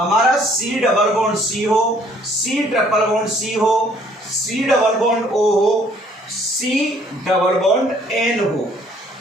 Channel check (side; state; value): both; normal; correlation 0.61